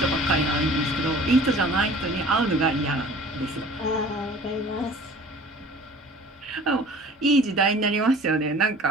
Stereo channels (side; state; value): both; normal; correlation 0.46